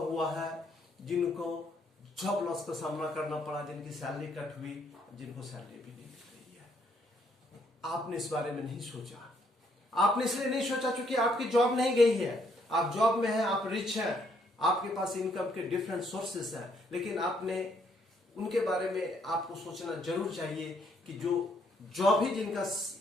है जिनको जॉब लॉस का सामना करना पड़ा, जिनकी सैलरी कट हुई, जिनको सैलरी भी नहीं मिल रही है। आपने इस बारे में नहीं सोचा। आपने इसलिए नहीं सोचा क्योंकि आपकी जॉब नहीं गई है, आप जॉब में हैं, आप रिच हैं, आपके पास इनकम के डिफरेंट सोर्सेस हैं, लेकिन आपने उनके बारे में आपको सोचना जरूर चाहिए कि जो जॉब ही जिनका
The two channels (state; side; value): normal; both; correlation 0.70